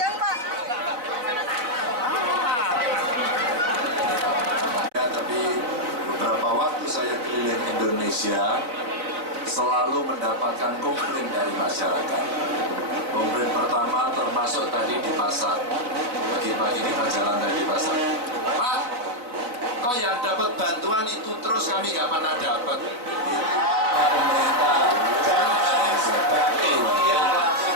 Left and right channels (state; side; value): late; left; 4.1 ms